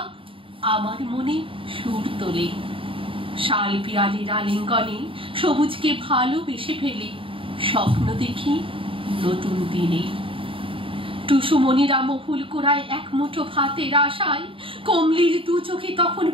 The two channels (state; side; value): late; left; 0.26 ms